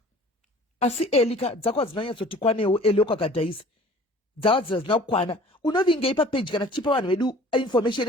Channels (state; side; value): normal; both; correlation 0.48